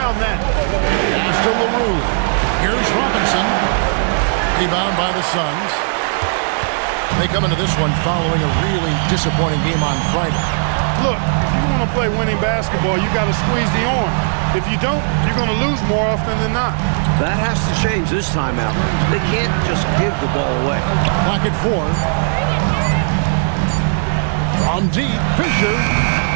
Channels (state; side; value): silent; left; digital silence